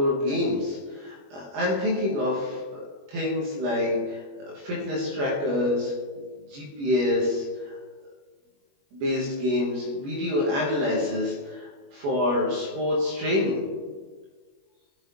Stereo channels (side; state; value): left; late; 21 ms